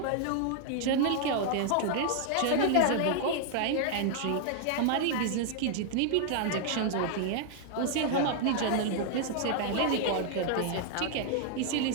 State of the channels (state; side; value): different; both; correlation 0.00